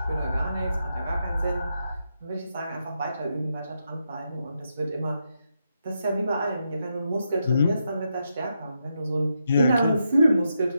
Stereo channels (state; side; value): inverted; both; correlation -0.83